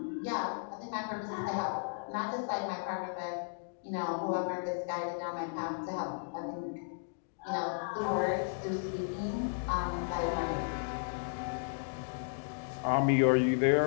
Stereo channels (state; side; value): silent; right; digital silence